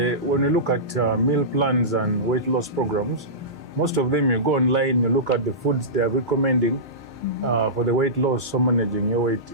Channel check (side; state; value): both; normal; correlation -0.19